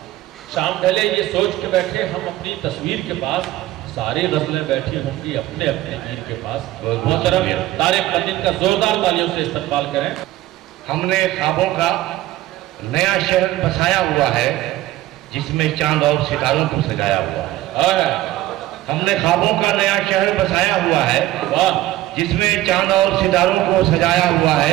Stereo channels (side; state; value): left; quieter; 15.5 dB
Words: شام ڈھلے یہ سوچ کے بیٹھے ہم اپنی تصویر کے پاس، ساری غزلیں بیٹھی ہوں گی اپنے اپنے پیر کے پاس۔ محترم طارق پنڈت کا زوردار تالیوں سے استقبال کریں۔ ہم نے خوابوں کا نیا شہر بسایا ہوا ہے جس میں چاند اور ستاروں کو سجایا ہوا ہے، ہم نے خوابوں کا نیا شہر بسایا ہوا ہے جس میں چاند اور ستاروں کو سجایا ہوا